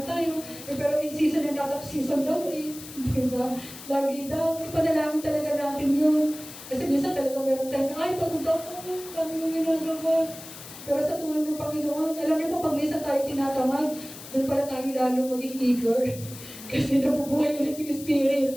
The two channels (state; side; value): noise; left; hiss, 14 dB below the sound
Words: tayo. Pero in season and out of season daw eh. Diba? Lagi daw, ipanalangin talaga natin yun. Kasi minsan talaga meron tayo, ay pagod ako, paano yung ginagawa? Pero sa tulong ng Panginoon, alam niyo po, pag minsan tayo tinatamad, doon pala tayo lalo maging eager. Kasi nabubuhay ulit yung spirit.